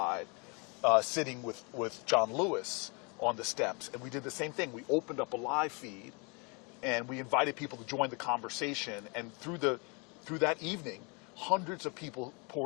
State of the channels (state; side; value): quieter; right; 31.8 dB